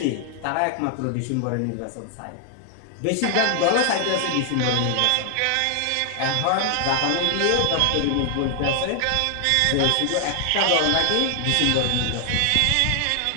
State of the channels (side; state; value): both; different; correlation 0.00